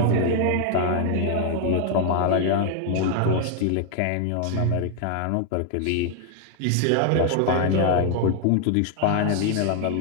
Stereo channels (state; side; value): different; both; correlation 0.00